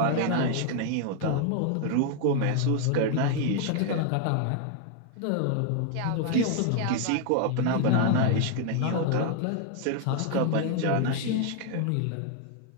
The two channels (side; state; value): both; different; correlation 0.00